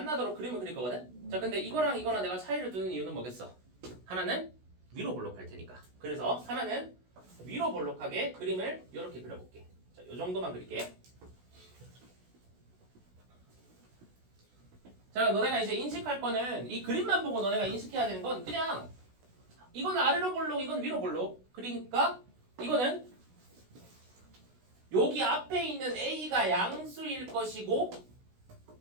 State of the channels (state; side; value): late; left; 16 ms